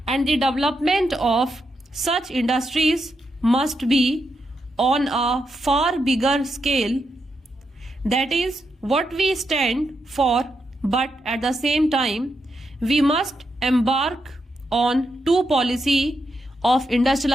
and the development of such industries must be on a far bigger scale. That is what we stand for, but at the same time, we must embark on two policy of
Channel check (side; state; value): both; normal; correlation 0.83